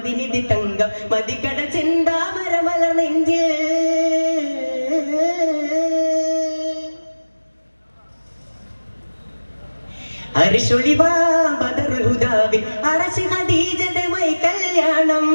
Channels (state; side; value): inverted; both; correlation -1.00